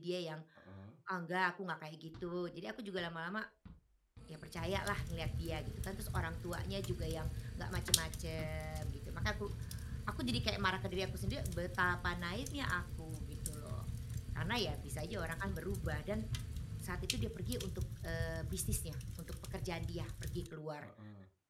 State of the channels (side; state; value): both; identical; correlation 1.00